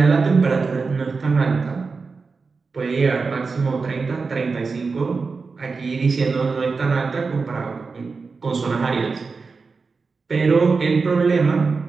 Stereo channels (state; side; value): quieter; left; 4.5 dB